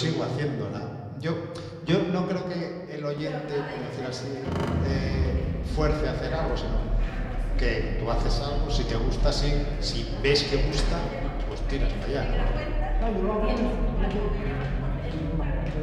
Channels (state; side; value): identical; both; correlation 1.00